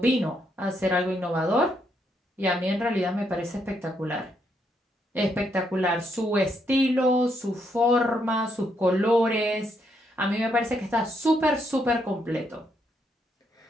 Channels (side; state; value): both; normal; correlation 0.76